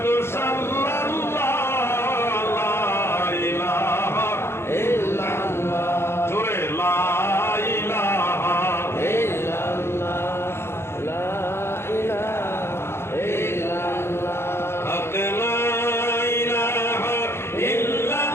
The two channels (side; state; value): right; late; 0.12 ms